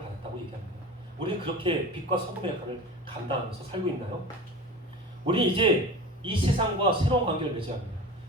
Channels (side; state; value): both; normal; correlation 0.33